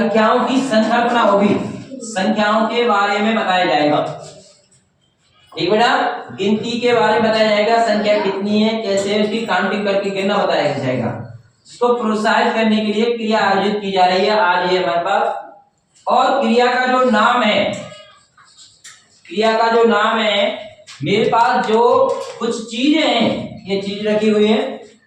की संकल्पना होगी, संख्याओं के बारे में बताया जाएगा। ठीक बेटा, गिनती के बारे में बताया जाएगा, संख्या कितनी है, कैसे उसकी काउंटिंग करके गिनना बताया जाएगा। इसको प्रोत्साहित करने के लिए क्रिया आयोजित की जा रही है आज ये हमारे पास। और क्रिया का जो नाम है, क्रिया का जो नाम है, मेरे पास जो कुछ चीजें हैं, ये चीज रखी हुई है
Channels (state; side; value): identical; both; correlation 1.00